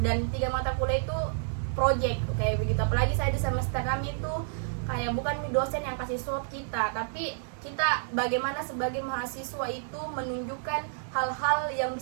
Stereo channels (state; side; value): silent; left; digital silence